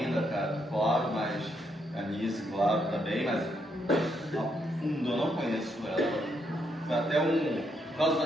cara, claro, mas a Nice, claro, também, mas a fundo eu não conheço ela. Foi até por causa da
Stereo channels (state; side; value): normal; both; correlation 0.77